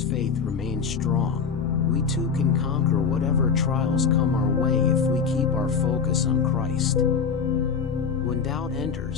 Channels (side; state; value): right; quieter; 5.9 dB